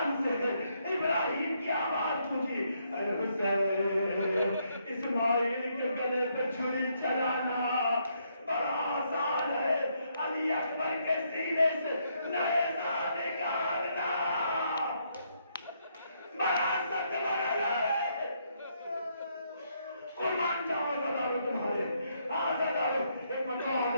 ابراہیم کی آواز پہنچی, اے حسین, اسماعیل کے گلے پہ چھری چلانا بڑا آسان ہے, علی اکبر کے سینے سے نیزہ نکالنا بڑا سخت مرحلہ ہے. قربان جاؤ عزادارو تمہارے. عزادارو, ایک مرتبہ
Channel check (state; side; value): inverted; both; correlation -0.74